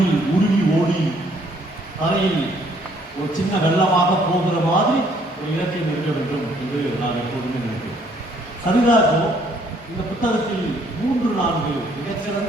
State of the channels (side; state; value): both; normal; correlation 0.64